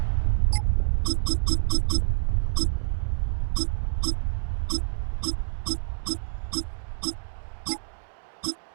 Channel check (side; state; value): left; silent; digital silence